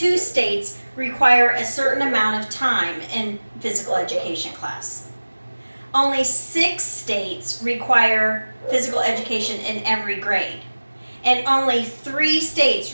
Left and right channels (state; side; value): inverted; both; correlation -1.00